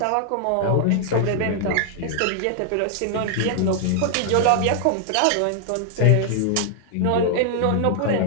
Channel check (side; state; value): both; different; correlation 0.00